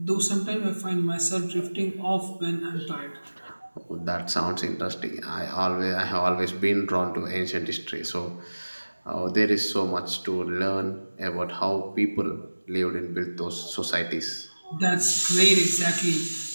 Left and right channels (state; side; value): inverted; both; correlation -1.00